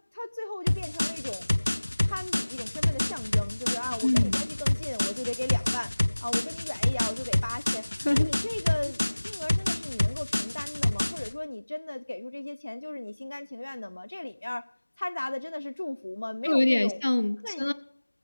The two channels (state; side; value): inverted; both; correlation -1.00